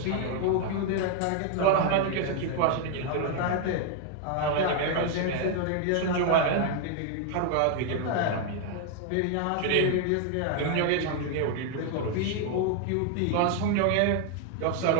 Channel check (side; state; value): both; different; correlation 0.00